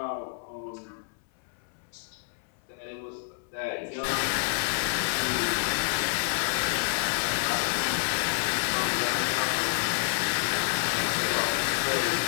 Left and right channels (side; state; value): right; silent; 59 dB below the other